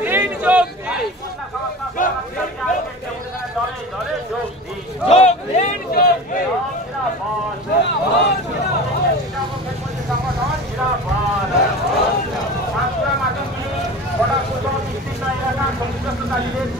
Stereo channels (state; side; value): normal; both; correlation 0.34